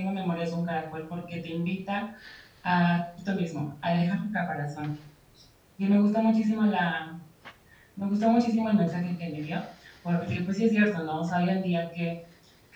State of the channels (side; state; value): both; identical; correlation 1.00